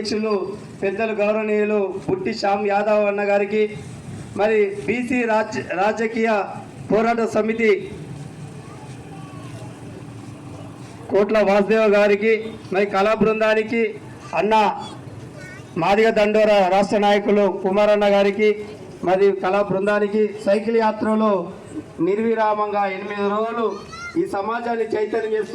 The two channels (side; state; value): both; identical; correlation 1.00